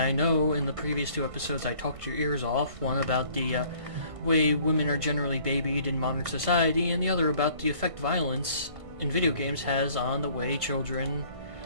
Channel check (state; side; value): late; left; 1.5 ms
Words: know in the previous two episodes I talked your ears off, one about the way women are generally babied in modern society, and the other about the effect violence in video games has on the way children